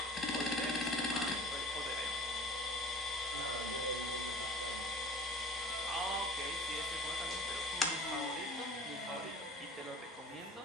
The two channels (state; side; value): normal; both; correlation 0.43